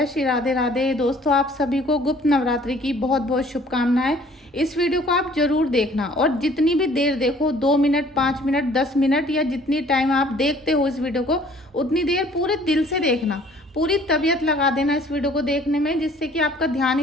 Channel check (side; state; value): both; normal; correlation 0.55